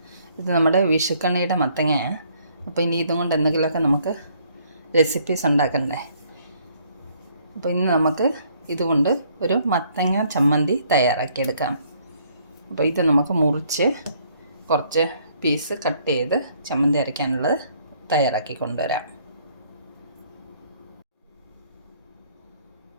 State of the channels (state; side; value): inverted; both; correlation -0.65